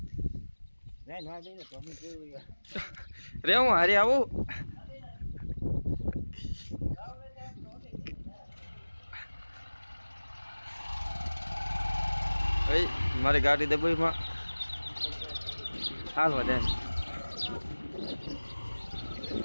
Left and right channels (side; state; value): both; inverted; correlation -1.00